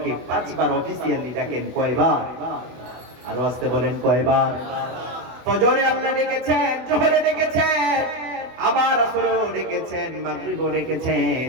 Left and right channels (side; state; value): left; late; 24 ms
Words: 5 বার অফিসিয়ালি ডাকেন। কয়বার? আরো আসতে বলেন কয়বার? ফজরে আল্লাহ ডেকেছেন, জোহরে ডেকেছেন, আবার আসরেও ডেকেছেন, মাগরিবেও ডেকেছেন,